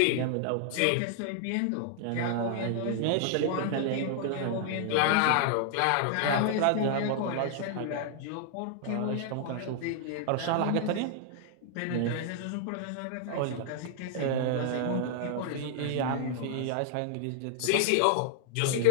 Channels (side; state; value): both; different; correlation -0.01